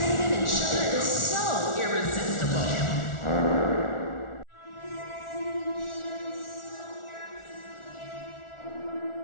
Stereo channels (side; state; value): right; late; 1.4 ms